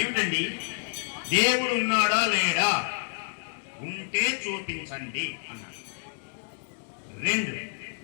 దేవుడు ఉన్నాడా లేడా? ఉంటే చూపించండి అన్నాడు. 2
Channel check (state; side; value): silent; right; digital silence